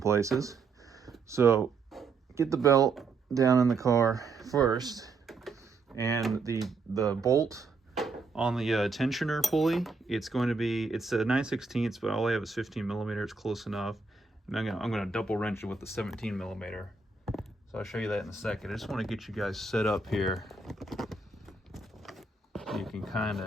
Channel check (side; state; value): left; quieter; 4.2 dB